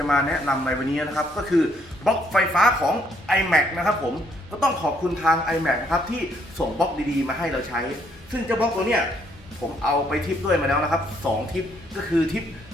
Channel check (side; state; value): both; normal; correlation 0.69